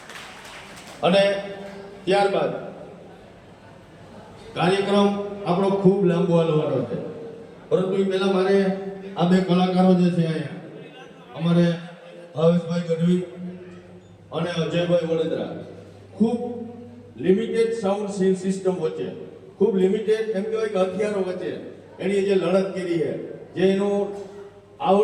અને ત્યારબાદ કાર્યક્રમ આપણો ખૂબ લાંબો હાલવાનો છે, પરંતુ એ પહેલા મારે આ બે કલાકારો જે છે અહીંયા અમારે ભાવેશભાઈ ગઢવી અને અજયભાઈ વડોદરા ખૂબ લિમિટેડ સાઉન્ડ સિસ્ટમ વચ્ચે, ખૂબ લિમિટેડ એમ કહેવાય કે હથિયારો વચ્ચે એની જે લડત કરી છે, જે એનું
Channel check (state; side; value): identical; both; correlation 1.00